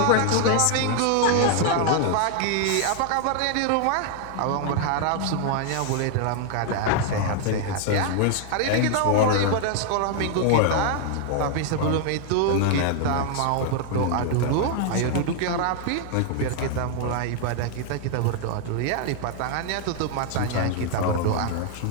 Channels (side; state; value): both; different; correlation 0.00